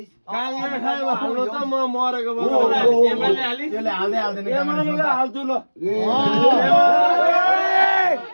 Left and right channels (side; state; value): both; inverted; correlation -1.00